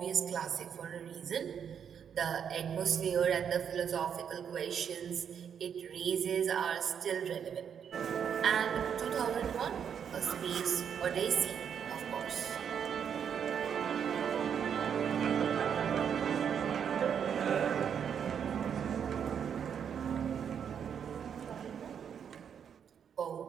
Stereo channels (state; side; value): quieter; left; 7.9 dB